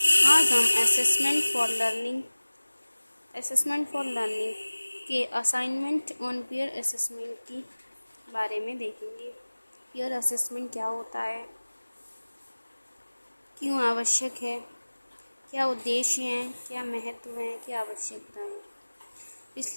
आज हम असेसमेंट फॉर लर्निंग के असाइनमेंट ऑन पीयर असेसमेंट की बारे में देखेंगे। पीयर असेसमेंट क्या होता है, क्यों आवश्यक है, क्या उद्देश्य हैं, क्या महत्व हैं, क्या आवश्यकताएं।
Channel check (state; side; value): inverted; both; correlation -1.00